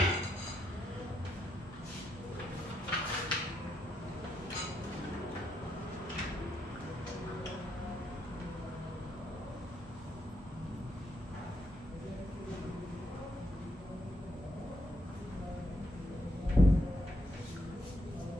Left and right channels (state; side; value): normal; both; correlation 0.79